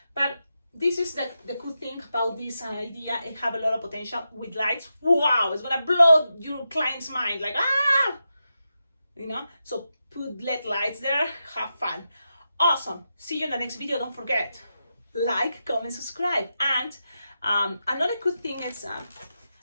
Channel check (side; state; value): both; inverted; correlation -0.88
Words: But this is the cool thing about this idea. It have a lot of potential with lights. Wow, it's gonna blow your client's mind, like you know. So put LED lights there, have fun. Awesome. See you in the next video. Don't forget, like, comment, subscribe. And another good thing is